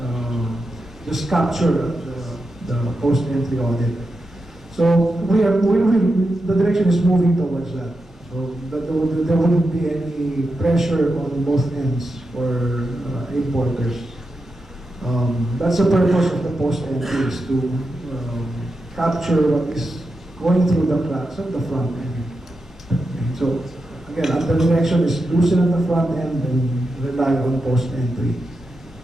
just capture the post-entry audit. So the direction is moving towards that. So that there wouldn't be any pressure on both ends for importers. That's the purpose of the post-entry, is to capture what is going through the cracks at the front end. Okay, so again, the direction is loosen at the front end and rely on post-entry.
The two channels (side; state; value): both; normal; correlation 0.88